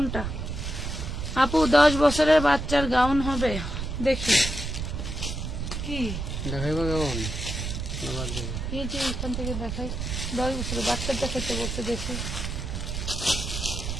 আপু 10 বছরের বাচ্চার গাউন হবে, দেখি কি দেখাইবা কেমন? এই যে এখান থেকে দেখাই, 10 বছরের বাচ্চার দেখাইতে বলতে। দেখি,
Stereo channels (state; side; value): noise; right; rumble, 4 dB below the sound